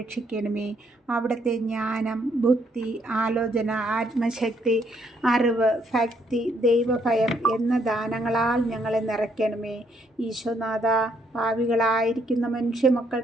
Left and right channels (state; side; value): normal; both; correlation 0.71